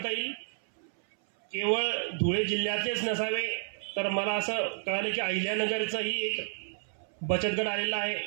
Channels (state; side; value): silent; left; 57 dB below the other